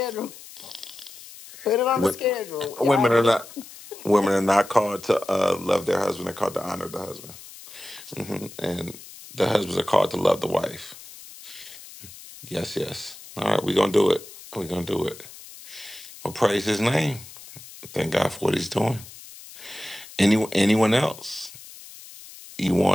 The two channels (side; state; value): left; noise; hiss, 17 dB below the sound